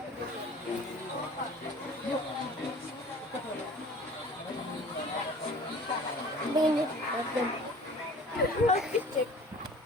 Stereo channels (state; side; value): normal; both; correlation 0.46